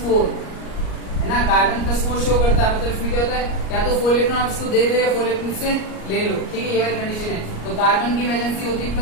है ना। कार्बन +4 शो करता है, मतलब इसमें क्या होता है, या तो 4 इलेक्ट्रॉन आप इसको दे दो या 4 इलेक्ट्रॉन से ले लो, ठीक है, ये वाली कंडीशन है। तो कार्बन की वैलेंसी होती है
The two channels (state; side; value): late; right; 38 ms